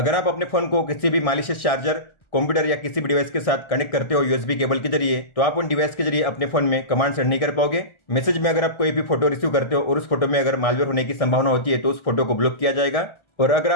आप अपने फोन को किसी भी मालिशियस चार्जर, कंप्यूटर या किसी भी डिवाइस के साथ कनेक्ट करते हो यूएसबी केबल के जरिए, तो आप उन डिवाइस के जरिए अपने फोन में कमांड सेंड नहीं कर पाओगे। मैसेज में अगर आप कोई भी फोटो रिसीव करते हो और उस फोटो में अगर मालवेयर होने की संभावना होती है तो उस फोटो को ब्लॉक किया जाएगा। और अगर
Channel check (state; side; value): late; right; 1.6 ms